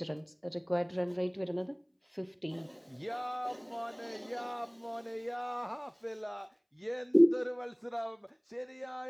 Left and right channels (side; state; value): both; identical; correlation 1.00